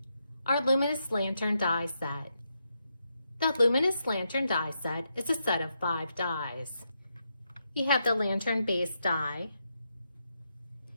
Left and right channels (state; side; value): inverted; both; correlation -0.82